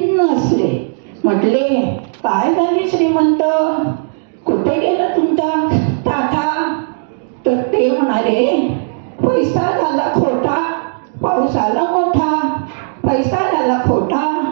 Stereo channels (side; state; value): left; silent; 64 dB below the other